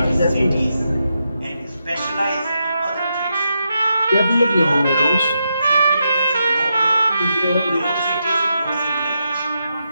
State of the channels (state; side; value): inverted; both; correlation -0.84